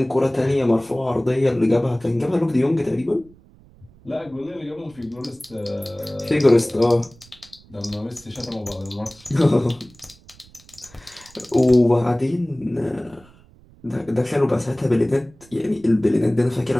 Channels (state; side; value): noise; right; rumble, 26 dB below the sound